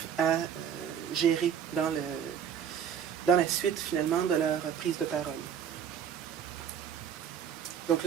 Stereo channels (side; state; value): left; quieter; 8.2 dB